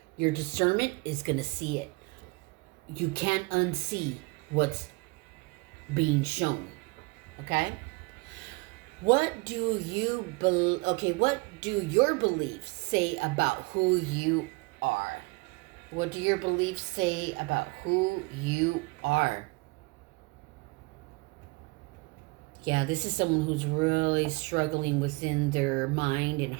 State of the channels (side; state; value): left; quieter; 26.0 dB